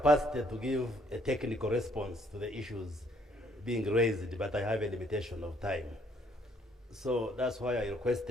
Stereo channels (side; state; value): both; normal; correlation 0.66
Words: to give a technical response to the issues being raised, but I have a limitation of time. So that's why I